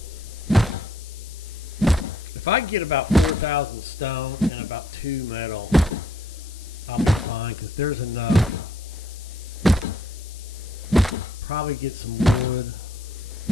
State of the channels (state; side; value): noise; left; hiss, 19 dB below the sound